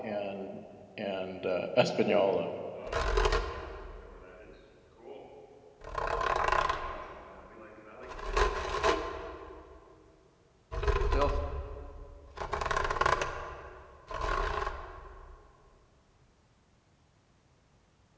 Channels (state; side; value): identical; both; correlation 1.00